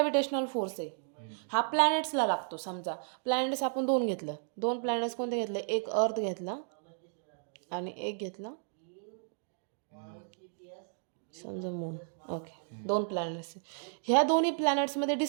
फोर्स आहे हा प्लॅनेट्सला लागतो. समजा प्लॅनेट्स आपण 2 घेतलं. 2 प्लॅनेट्स कोणते घेतले? एक अर्थ घेतला आणि एक घेतला समजा मून. Okay, 2 planets. ह्या दोन्ही प्लॅनेट्समध्ये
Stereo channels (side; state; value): left; silent; digital silence